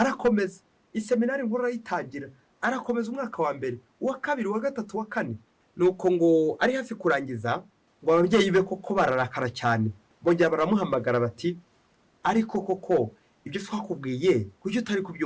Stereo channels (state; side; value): identical; both; correlation 1.00